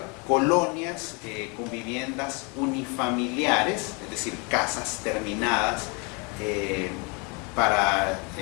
colonias con viviendas unifamiliares, es decir, casas terminadas en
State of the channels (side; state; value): right; quieter; 31.8 dB